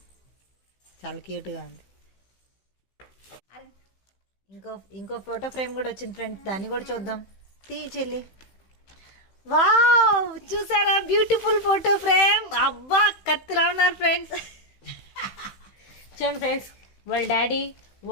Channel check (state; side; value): late; right; 16 ms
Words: చాలా క్యూట్గా ఉంది. ఇంకో ఫోటో ఫ్రేమ్ కూడా వచ్చింది ఫ్రెండ్స్, దాన్ని కూడా చూద్దాం. తీ చెల్లి. వావ్, చూసారా బ్యూటిఫుల్ ఫోటో ఫ్రేమ్. అబ్బా కత్తిలా ఉన్నారు ఫ్రెండ్స్. చూడండి ఫ్రెండ్స్, వాళ్ళ డాడీ,